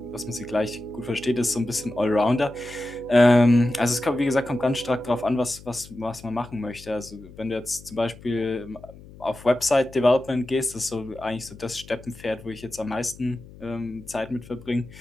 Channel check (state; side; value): noise; left; hum, 19 dB below the sound